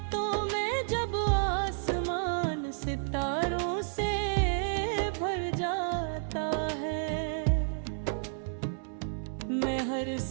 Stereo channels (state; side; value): silent; left; 57 dB below the other